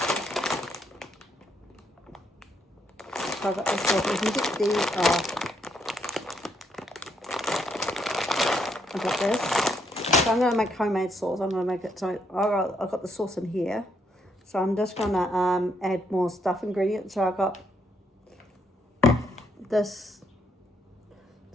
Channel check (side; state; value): both; normal; correlation 0.74